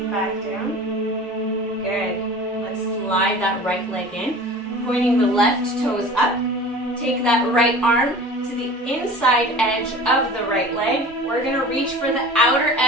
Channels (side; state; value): both; normal; correlation 0.40